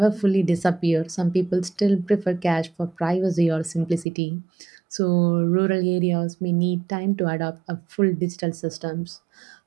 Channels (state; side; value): drops out; left; at 4.0 s